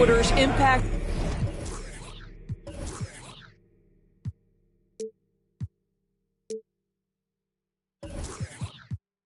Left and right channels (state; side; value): identical; both; correlation 1.00